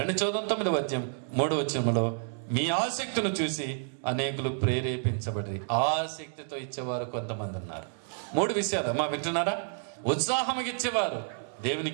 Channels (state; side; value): silent; left; digital silence